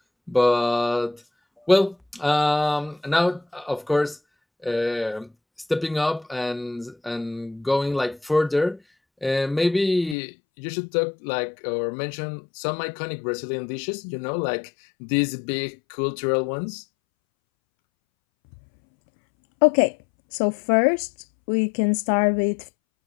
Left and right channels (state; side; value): drops out; right; at 10.2 s